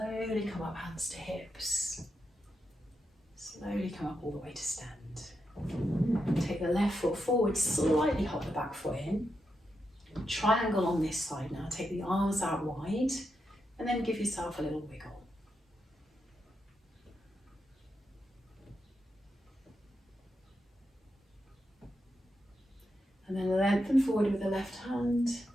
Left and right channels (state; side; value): normal; both; correlation 0.85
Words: come up, hands to hips. Slowly come up all the way to stand. Take the left foot forward, slightly hop the back foot in. Triangle on this side now, take the arms out wide, and then give yourself a little wiggle. And then lengthen forward with the left hand,